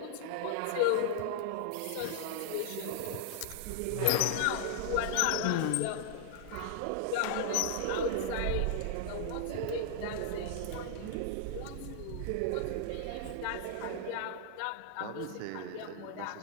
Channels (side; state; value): both; different; correlation -0.01